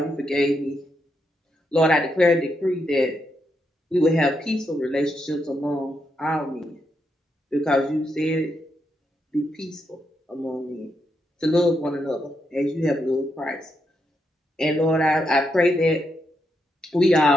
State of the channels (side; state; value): both; normal; correlation 0.81